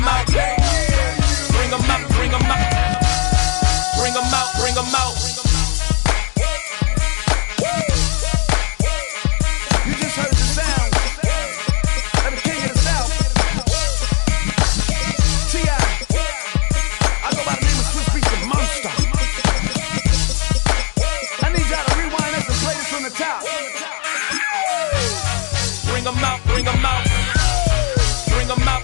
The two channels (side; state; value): right; quieter; 37.7 dB